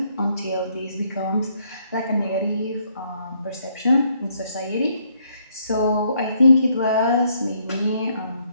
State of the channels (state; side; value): inverted; both; correlation -0.70